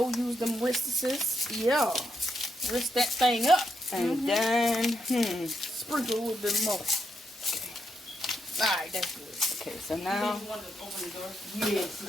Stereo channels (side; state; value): both; normal; correlation 0.81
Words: use them wrists. Yeah. Wrist that thing up. And then, sprinkle a little bit more. Okay. Alright, that's good. Okay, so now. You want to open the door? Yes,